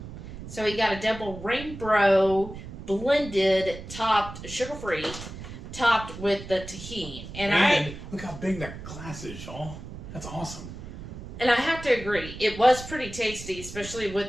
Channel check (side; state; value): right; noise; rumble, 12 dB below the sound